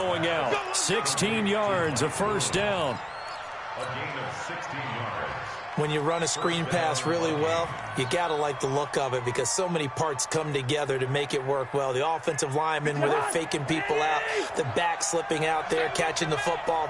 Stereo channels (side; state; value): both; identical; correlation 1.00